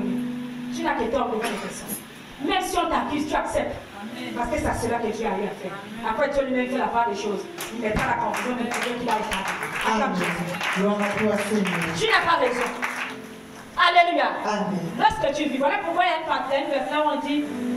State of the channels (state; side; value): identical; both; correlation 1.00